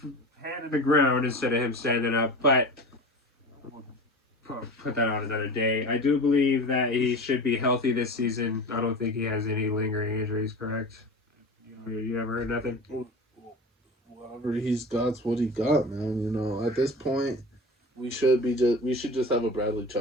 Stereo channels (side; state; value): both; normal; correlation 0.33